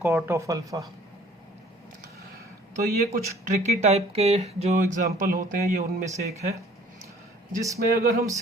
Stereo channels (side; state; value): both; normal; correlation 0.54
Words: ऑफ अल्फ़ा। तो ये कुछ ट्रिकी टाइप के जो एग्जांपल होते हैं ये उनमें से एक है, जिसमें अगर हम